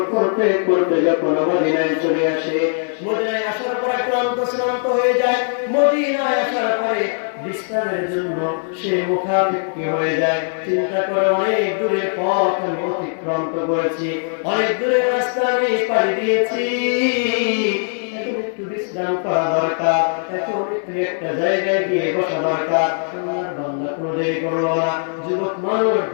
করতে করতে যখন মদিনায় চলে আসে, মদিনায় আসার পর ক্লান্ত হয়ে যায়। মদিনায় আসার পরে বিশ্রামের জন্য সে মুখাপেক্ষী হয়ে যায়। চিন্তা করে অনেক দূরের পথ আমি অতিক্রম করেছি, অনেক দূরের রাস্তা আমি পাড়ি দিয়েছি, এখন একটু বিশ্রাম করা দরকার, এখন একটু একটা জায়গায় গিয়ে বসা দরকার। আমার বান্দা কোনো দেরি করলো না, যুবক মানুষ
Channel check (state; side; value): silent; right; 66 dB below the other